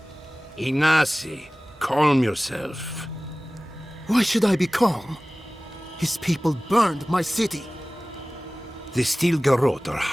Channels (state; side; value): normal; both; correlation 0.98